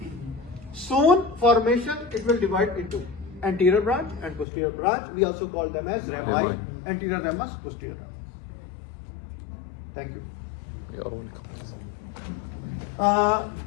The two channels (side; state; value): right; drops out; at 4.5 s